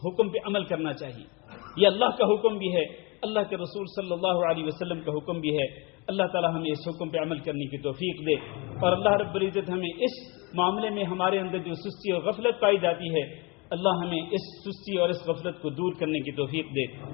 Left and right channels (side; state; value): right; quieter; 28.0 dB